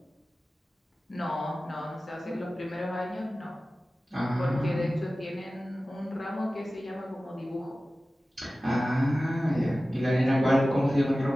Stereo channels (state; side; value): normal; both; correlation 0.96